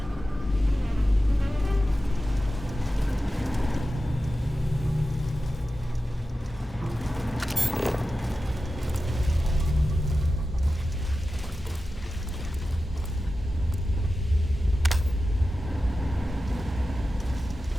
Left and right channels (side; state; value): both; normal; correlation 0.93